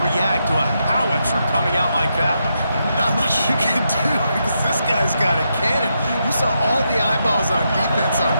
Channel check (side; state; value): both; inverted; correlation -0.83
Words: react to a howitzer coming out like that? Not much you can do because this guy's got a cannon. You saw all the eyeballs on defense on